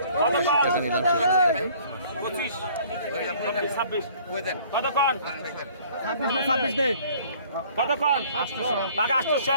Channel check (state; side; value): inverted; both; correlation -0.55